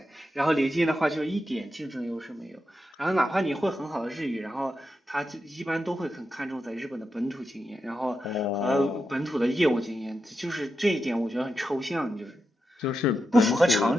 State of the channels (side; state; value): both; normal; correlation 0.87